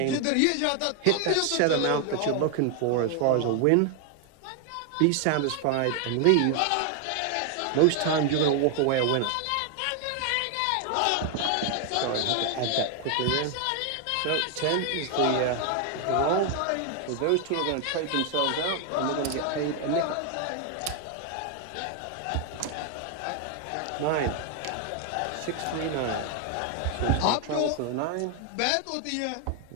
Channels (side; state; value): both; different; correlation 0.01